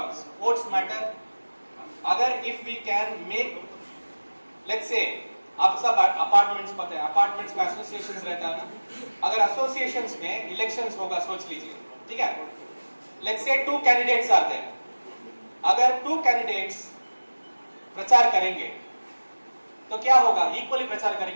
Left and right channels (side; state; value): both; inverted; correlation -1.00